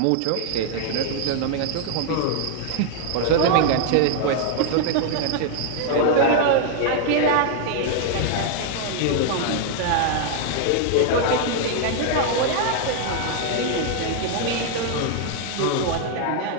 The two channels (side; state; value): both; different; correlation 0.00